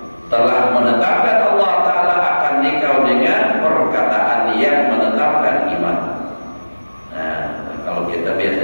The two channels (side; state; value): both; inverted; correlation -1.00